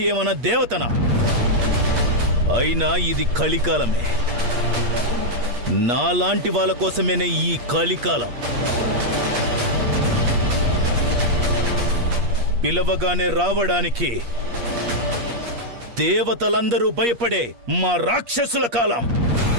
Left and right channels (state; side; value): late; left; 8.5 ms